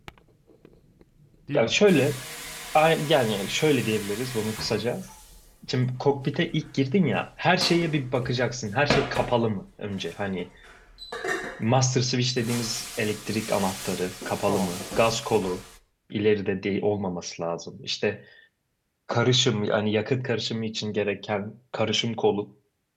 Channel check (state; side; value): identical; both; correlation 1.00